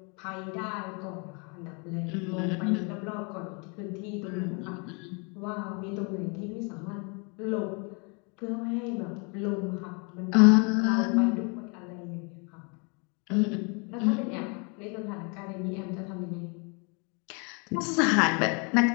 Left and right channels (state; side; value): quieter; right; 33.7 dB